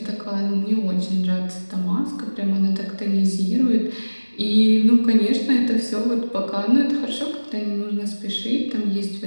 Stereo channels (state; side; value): inverted; both; correlation -1.00